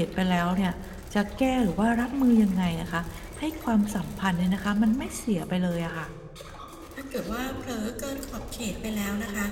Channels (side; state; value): both; identical; correlation 1.00